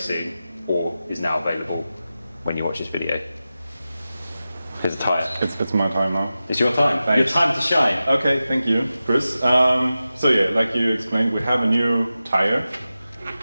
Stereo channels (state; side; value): inverted; both; correlation -0.94